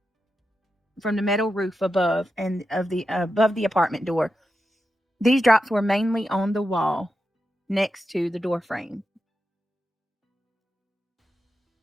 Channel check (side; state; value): both; normal; correlation 0.89